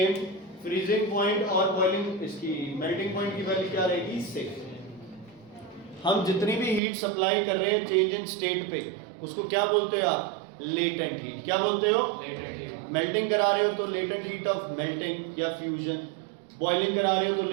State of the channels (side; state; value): left; drops out; at 6.8 s